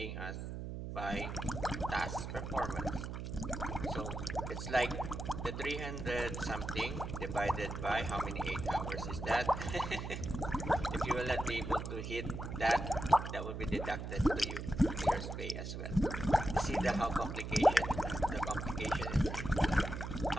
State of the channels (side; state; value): right; noise; hum, 6 dB below the sound